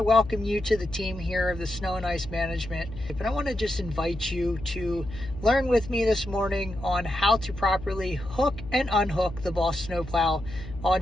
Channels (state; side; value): noise; left; hum, 12 dB below the sound